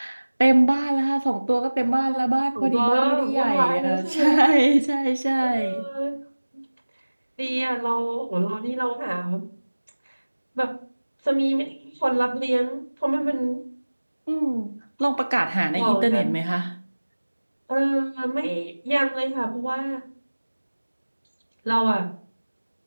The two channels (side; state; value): both; inverted; correlation -1.00